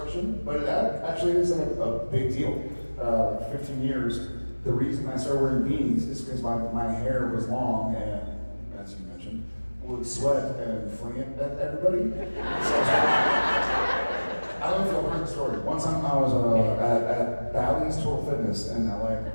But it actually is a big deal. 15 years. The reason I started wearing beanies is because my hair was long and, as you mentioned, would sweat and fling it at everybody. So I don't know if you'll heard the story. One time I was at Bally's Total Fitness in LA. And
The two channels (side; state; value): both; inverted; correlation -1.00